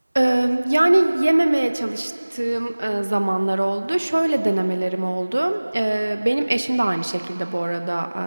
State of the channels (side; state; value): both; inverted; correlation -1.00